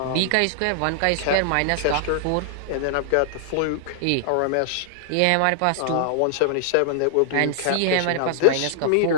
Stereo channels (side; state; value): both; different; correlation -0.01